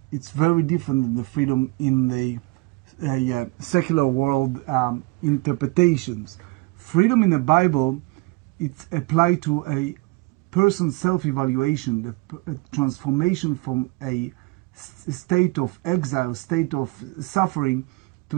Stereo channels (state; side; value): quieter; left; 25.2 dB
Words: it's very different than the freedom in the secular world interpretations. Freedom in the Bible, it's applied to a person's self-evaluation, the transformation from a state of exile, state of suffering,